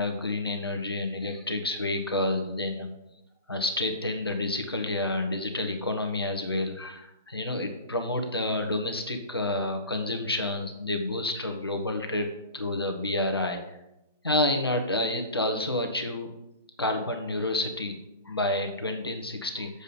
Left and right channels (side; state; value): both; inverted; correlation -0.37